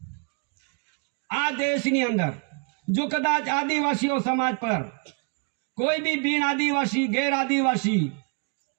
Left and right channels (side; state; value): left; quieter; 37.1 dB